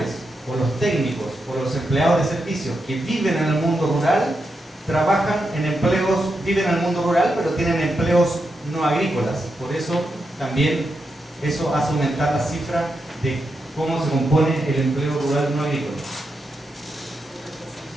o los técnicos o los empleados de servicios que viven en el mundo rural, viven en el mundo rural, pero tienen empleos no agrícolas. Por eso también eso hace aumentar la cifra de cómo se compone el empleo rural no agrícola.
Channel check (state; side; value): normal; both; correlation 0.85